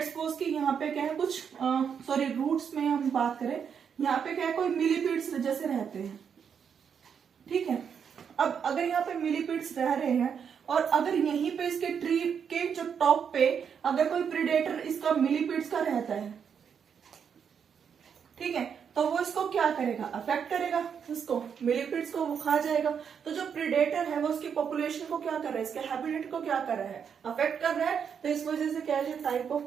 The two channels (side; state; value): left; quieter; 7.3 dB